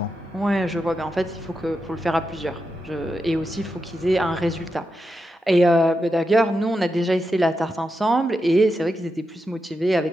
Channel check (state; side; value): normal; both; correlation 0.87